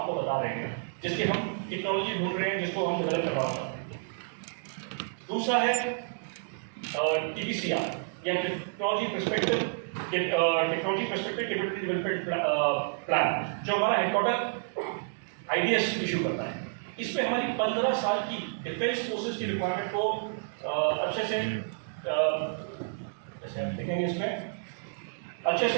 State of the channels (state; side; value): silent; left; digital silence